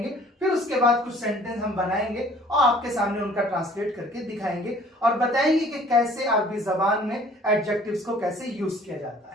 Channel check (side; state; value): both; normal; correlation 0.54